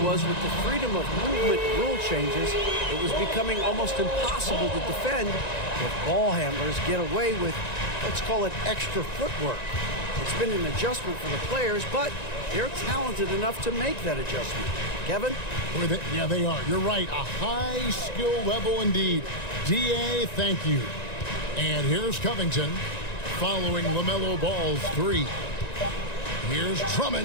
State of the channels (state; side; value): late; right; 1.9 ms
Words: was with the freedom of movement rule changes, it was becoming almost impossible to defend if ball handlers get away with, let's call it, extra footwork. It's been an adjustment for the players, but they're talented enough to make that adjustment. Kevin? Yeah, they are. You're right. A high skill level indeed. DA, thank you. And here's Covington following LaMelo Ball's 3. Here's